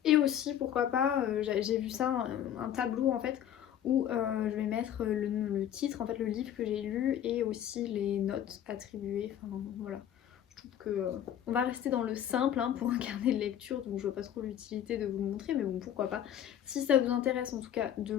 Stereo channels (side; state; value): right; quieter; 10.3 dB